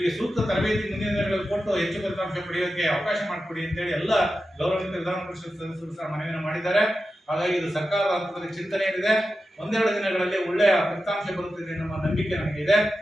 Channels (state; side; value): normal; both; correlation 0.91